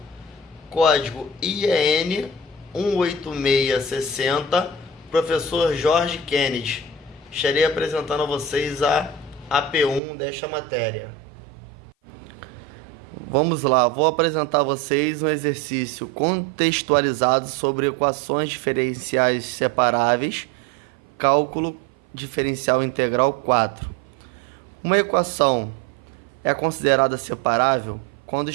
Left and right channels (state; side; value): drops out; left; at 10.0 s